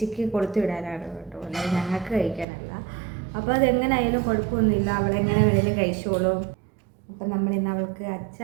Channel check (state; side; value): drops out; left; at 2.5 s